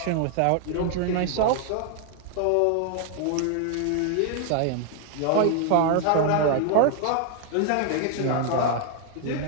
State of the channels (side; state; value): both; different; correlation 0.00